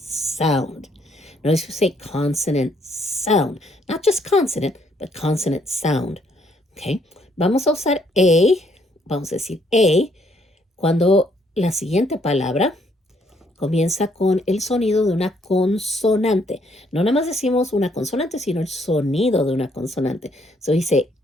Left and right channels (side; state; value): both; normal; correlation 0.69